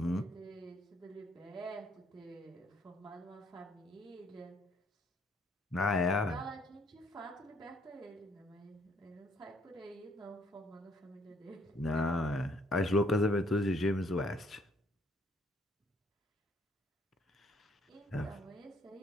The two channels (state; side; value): normal; both; correlation 0.65